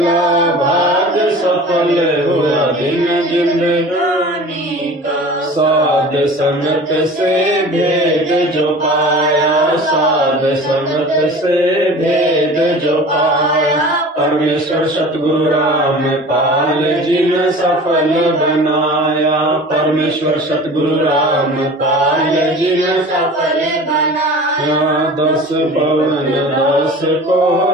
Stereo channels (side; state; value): both; normal; correlation 0.40